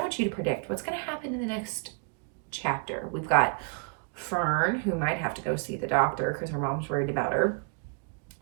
want you to predict what's going to happen in the next chapter. We've got Fern, who might have to go see the doctor because her mom's worried about her.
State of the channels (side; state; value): left; quieter; 37.2 dB